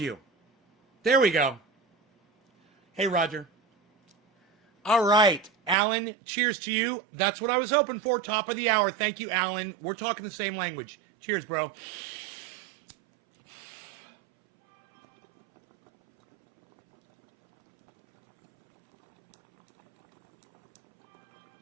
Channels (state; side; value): drops out; left; at 5.8 s